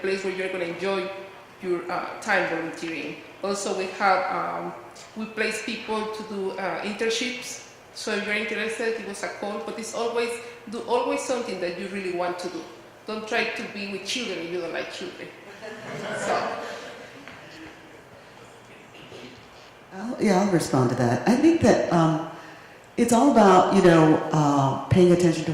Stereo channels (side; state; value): both; identical; correlation 1.00